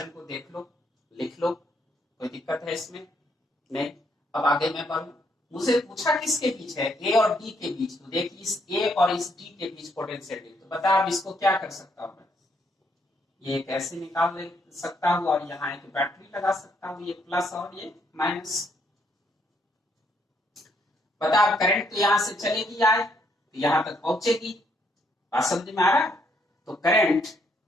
को देख लो, लिख लो, कोई दिक्कत है इसमें नहीं। अब आगे मैं बढ़ूं, मुझे पूछा किसके बीच है, A और D के बीच, तो देख इस A और इस D के बीच पोटेंशियल है, तो बता अब इसको क्या कर सकता हूं मैं, ये कैसे निकाल सकता हूं, और यहाँ एक बैटरी लगा सकता हूं, ये प्लस और ये माइनस। पता अब करंट तो यहां से चलेगी आए तो यहां तक पहुंचेगी, बात समझ में आ रहा है? तो करंट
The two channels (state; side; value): normal; both; correlation 0.72